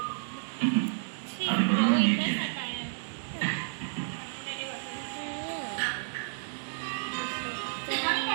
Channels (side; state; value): left; silent; digital silence